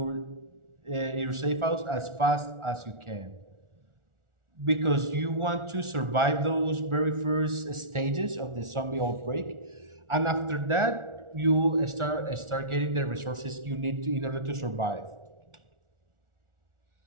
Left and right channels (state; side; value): late; left; 1.4 ms